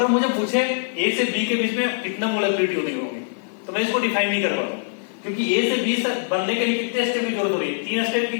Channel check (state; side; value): silent; right; digital silence